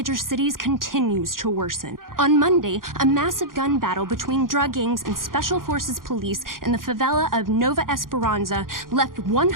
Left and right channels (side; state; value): left; late; 0.91 ms